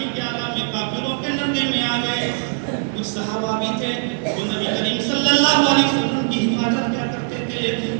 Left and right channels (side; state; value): left; silent; 65 dB below the other